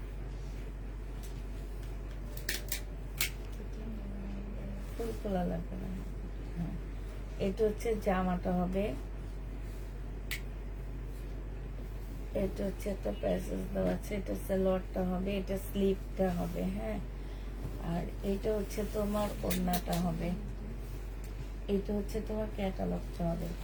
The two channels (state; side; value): identical; both; correlation 1.00